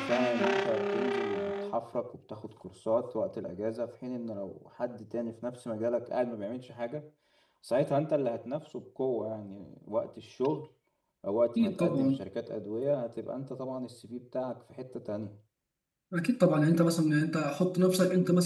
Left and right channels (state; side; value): identical; both; correlation 1.00